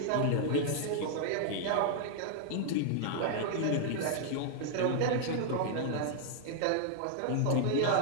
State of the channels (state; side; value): different; both; correlation 0.00